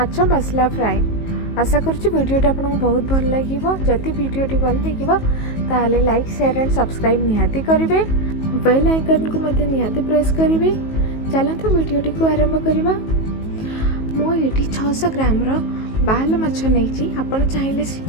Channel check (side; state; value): right; late; 19 ms